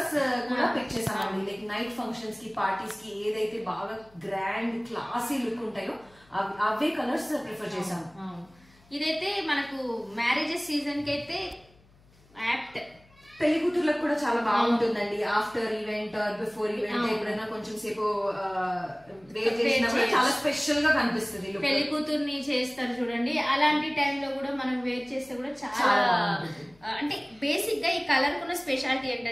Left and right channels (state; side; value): noise; left; hum, 29 dB below the sound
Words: కూడా పిక్ చేసామండి. లైక్ నైట్ ఫంక్షన్స్ కి పార్టీస్ కి ఏదైతే బాగా గ్రాండ్ క్లాసీ లుక్ ఉంటాయో అవే కలర్స్ ప్రిఫర్ చేసాము. ఇదైతే మనకు మ్యారేజెస్ సీజన్ కి అయితే యాప్ట్. పెళ్లి కూతుర్లకు కూడా చాలా బాగుంటుందండి. ఆఫ్టర్ ఈవెంట్ బిఫోర్ ఈవెంట్ ఎప్పుడైనా కొంచెం సేపు వేర్ చేసినా కూడా చాలా స్పెషల్ గా కనిపిస్తుంది. పెళ్లి కూతుర్ని చేస్తారు చూడండి, అలాంటి టైంలో కూడా మనం వేర్ చేస్తే కూడా చాలా అంటే బేసిక్ గా ఈ కలర్ కున్న స్పెషాలిటీ